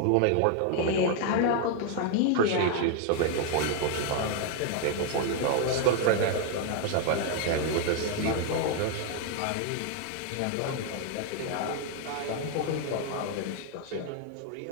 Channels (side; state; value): both; different; correlation 0.00